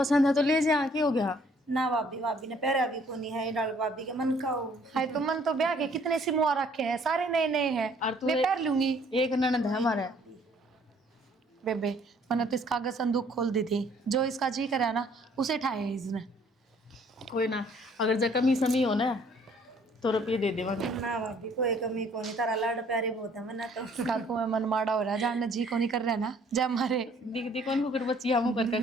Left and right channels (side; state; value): both; normal; correlation 0.60